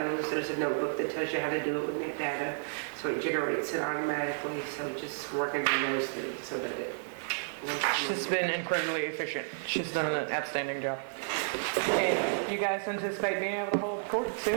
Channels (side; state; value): left; silent; digital silence